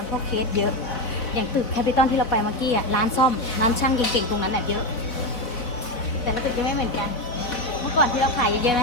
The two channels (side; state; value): right; late; 4.0 ms